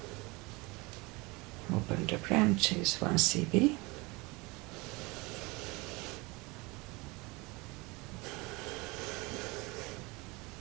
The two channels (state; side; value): quieter; left; 25.0 dB